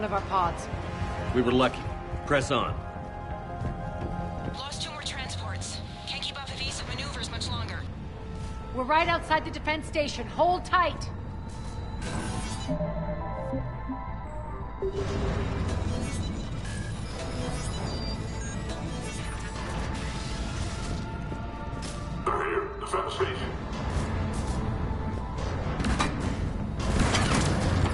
of our pods. We were lucky. Press on. Lost 2 more transports. Can't keep up evasive maneuvers much longer. We're right outside the defense station. Hold tight. They're here. Defense station.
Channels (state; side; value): identical; both; correlation 1.00